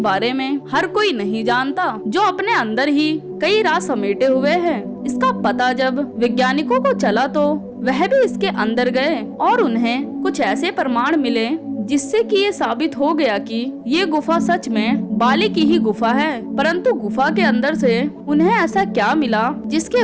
में हर कोई नहीं जानता, जो अपने अंदर ही कई राज समेटे हुए है। इसका पता जब वैज्ञानिकों को चला तो वह भी इसके अंदर गए और उन्हें कुछ ऐसे प्रमाण मिले जिससे कि ये साबित हो गया कि ये गुफा सच में बाली की ही गुफा है। परंतु गुफा के अंदर से उन्हें ऐसा क्या मिला जिसके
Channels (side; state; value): both; identical; correlation 1.00